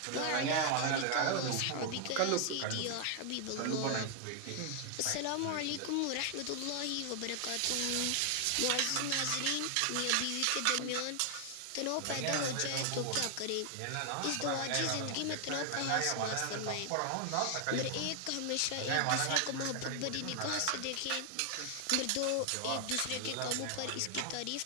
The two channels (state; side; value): different; both; correlation 0.00